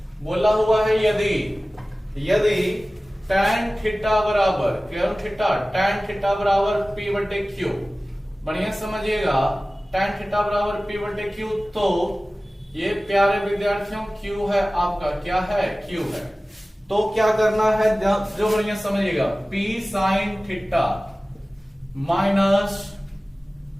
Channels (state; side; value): normal; both; correlation 0.97